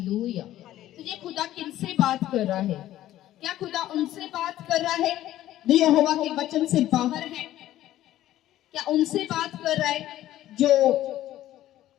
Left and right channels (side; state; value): right; quieter; 13.7 dB